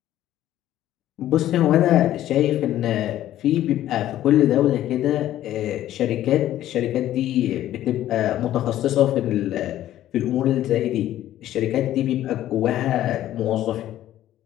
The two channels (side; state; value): right; quieter; 13.0 dB